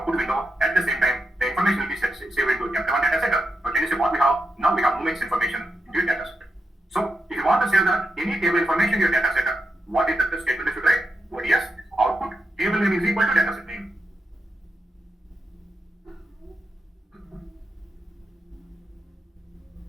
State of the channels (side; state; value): both; normal; correlation 0.85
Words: window. At the same time, the information will be saved into F1 data set. So can you see what we have? Now we have movements information in your data set. So if you want to save any table information in your data set, what is the statement you should write? ODS output table name is equal to data set name.